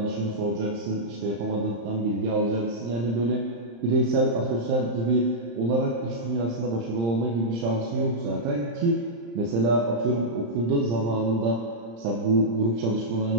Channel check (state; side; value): late; left; 35 ms